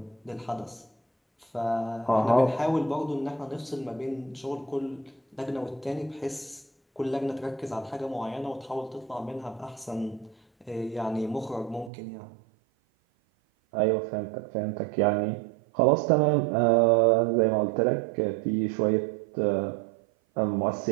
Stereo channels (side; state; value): left; drops out; at 11.9 s